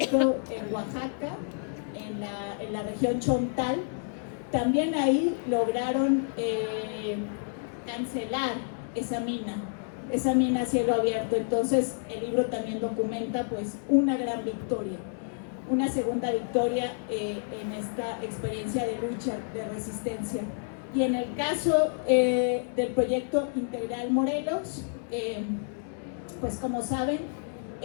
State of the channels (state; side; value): silent; right; digital silence